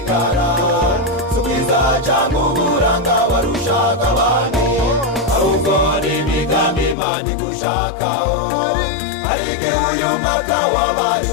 subiza cyangwa uburanga warushaga abandi, ahubwo ni imigambi Imana igushakaho. Hari igihe uyu mwaka wabaye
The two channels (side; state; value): right; drops out; at 7.0 s